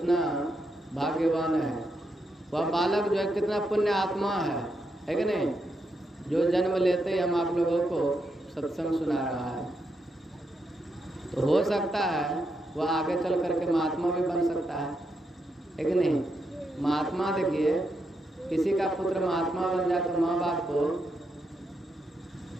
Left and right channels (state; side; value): normal; both; correlation 0.82